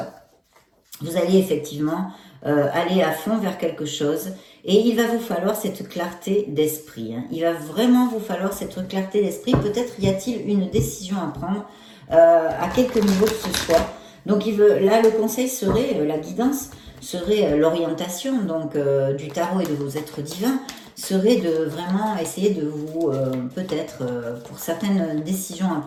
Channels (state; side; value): identical; both; correlation 1.00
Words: Vous allez effectivement aller à fond vers quelque chose, et il va vous falloir cette clarté d'esprit. Hein. Il va vraiment vous falloir cette clarté d'esprit. Peut-être y a-t-il une décision à prendre à quelque niveau que ce soit. Donc là, le conseil serait, la guidance serait l'orientation donc du tarot et de vos êtres divins, serait de vraiment essayer de vous, peut-être pour certaines décisions à